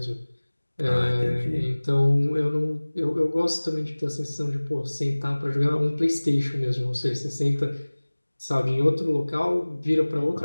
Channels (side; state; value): both; inverted; correlation -1.00